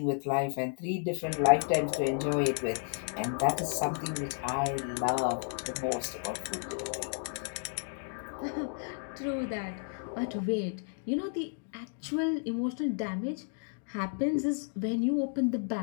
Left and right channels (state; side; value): silent; right; 56 dB below the other